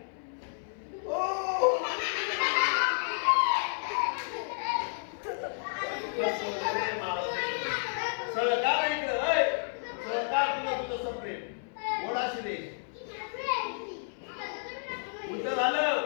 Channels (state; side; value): silent; right; 57 dB below the other